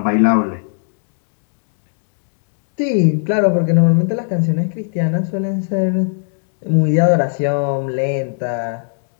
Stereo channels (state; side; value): silent; right; digital silence